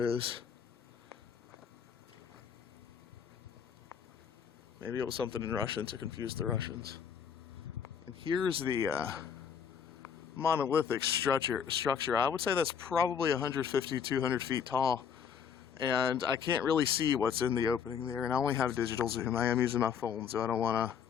Maybe it was something in Russian to confuse the Russians. And here's the monolithic structure. I would say that's probably 150, 200 feet tall. And I can't really see what's in the opening there. And I only have digital zoom. I am using my phone, so I don't want to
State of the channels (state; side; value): quieter; right; 7.4 dB